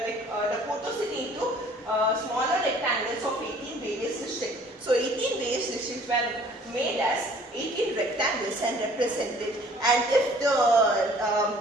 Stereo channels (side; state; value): both; normal; correlation 0.54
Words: photos into smaller rectangles of 18 various districts. So 18 various districts were made as 18 rectangles and represented. And if the